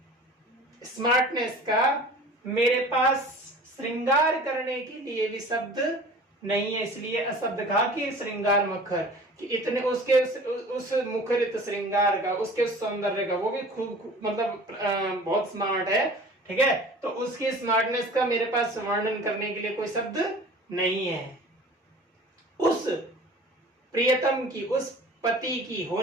स्मार्टनेस का मेरे पास श्रृंगार करने के लिए भी शब्द नहीं है, इसलिए अशब्द कहा कि श्रृंगार मुखर, कि इतने उसके उस मुखरित श्रृंगार का, उसके उस सौंदर्य का, वो भी खूब मतलब बहुत स्मार्ट है, ठीक है। तो उसकी स्मार्टनेस का मेरे पास वर्णन करने के लिए कोई शब्द नहीं है। उस प्रियतम की, उस पति की,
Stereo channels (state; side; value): normal; both; correlation 0.43